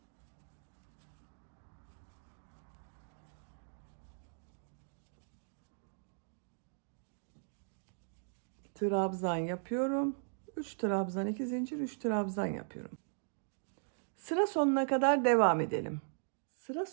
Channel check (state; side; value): silent; left; digital silence